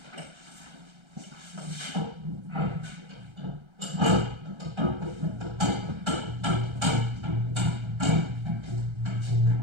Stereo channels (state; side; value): late; left; 1.3 ms